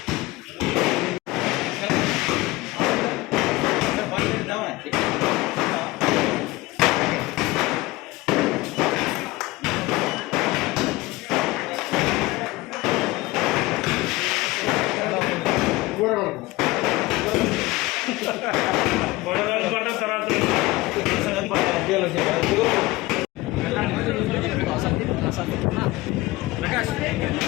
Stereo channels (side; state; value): right; quieter; 20.3 dB